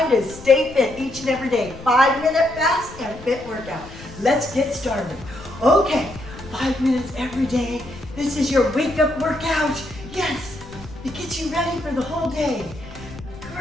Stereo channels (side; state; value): left; noise; rumble, 16 dB below the sound